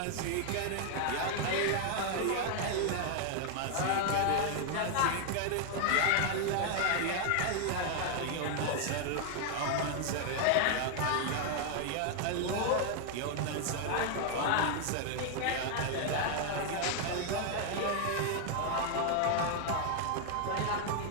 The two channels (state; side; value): different; both; correlation 0.00